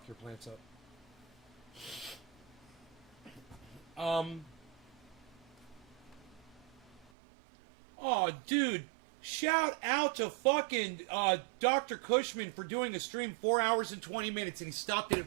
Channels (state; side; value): drops out; left; at 7.1 s